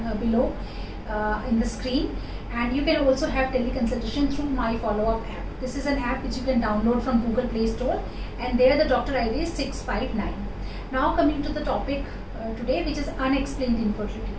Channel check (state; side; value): identical; both; correlation 1.00